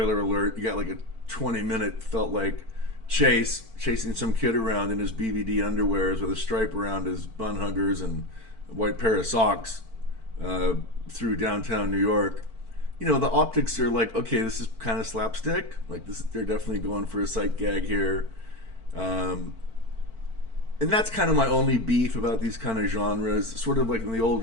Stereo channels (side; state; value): left; late; 4.5 ms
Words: alert, you got like a 20-minute felt like chasing some kid around in his BVD underwears with a stripe around his bun huggers and a white pair of socks through downtown New York. You know, the optics are like, okay, this is kind of slapstick. Like they're definitely going for a sight gag here. And that's kind of my only beef about these kind of genres. Sort of like in the